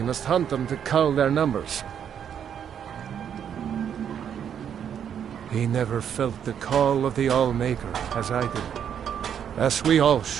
must hunt them to cull their numbers. He never felt the call of the Allmaker, as I did. As we all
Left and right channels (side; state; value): left; quieter; 8.6 dB